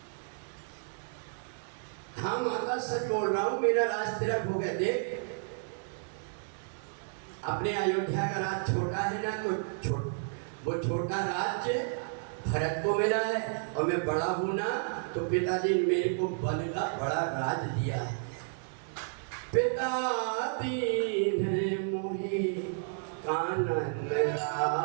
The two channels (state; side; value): silent; left; digital silence